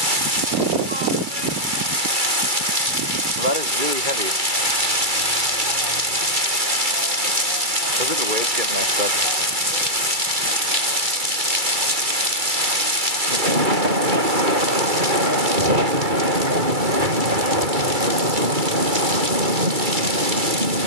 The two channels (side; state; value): left; late; 2.3 ms